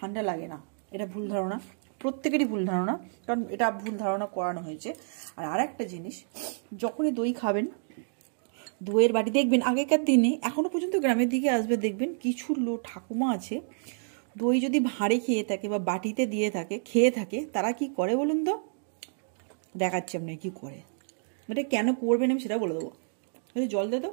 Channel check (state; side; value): silent; left; digital silence